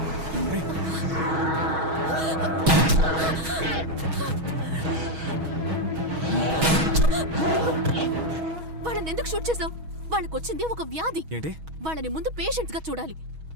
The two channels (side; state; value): left; late; 6.3 ms